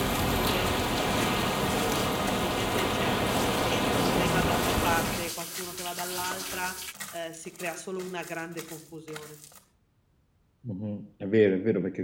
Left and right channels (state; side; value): identical; both; correlation 1.00